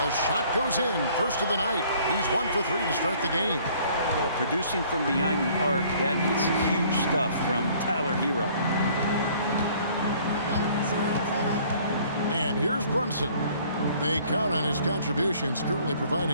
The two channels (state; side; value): inverted; both; correlation -0.57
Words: shot goes in. First of the night. He's 1 for 3 to start the game. Producing from behind the arc, that is huge stuff from Tyler Hero. And here's Brunson. They count on his contributions, currently